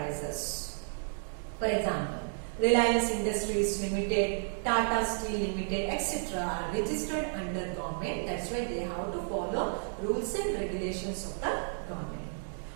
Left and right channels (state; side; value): silent; left; digital silence